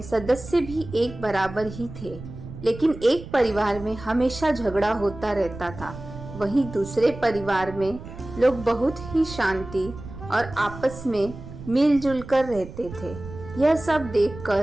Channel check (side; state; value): right; noise; rumble, 13 dB below the sound